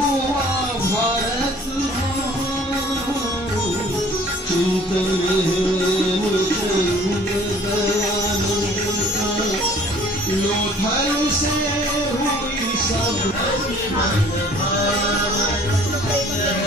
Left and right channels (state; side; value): normal; both; correlation 0.53